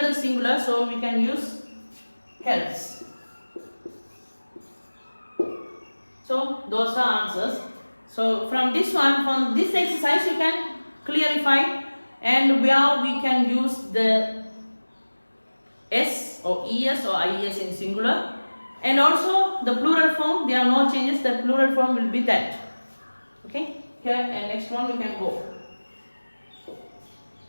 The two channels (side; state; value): both; inverted; correlation -1.00